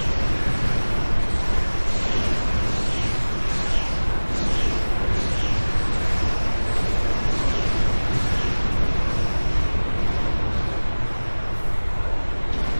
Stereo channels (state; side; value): inverted; both; correlation -1.00